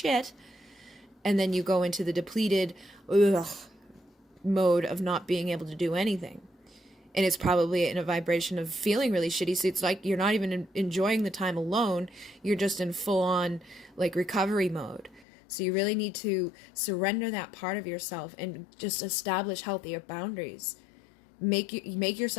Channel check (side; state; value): right; drops out; at 15.2 s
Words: And then you go into the depleted mode of not being able to do anything. And it's probably in a vibration of feeling really shitty. So it's like you're not even enjoying the time alone. You're just in full on like recovery mode. So you really need to surrender that part of yourself and just establish healthier boundaries. Make